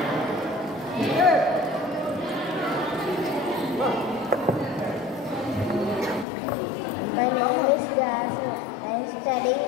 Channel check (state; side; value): drops out; right; at 6.2 s